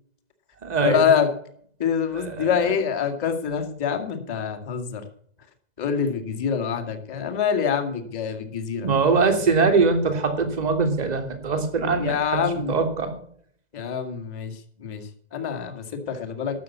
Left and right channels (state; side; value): late; left; 2.0 ms